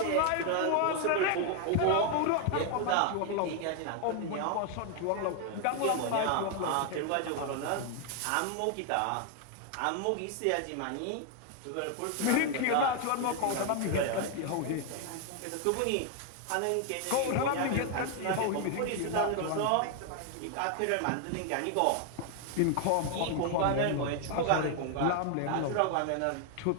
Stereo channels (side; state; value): both; different; correlation 0.00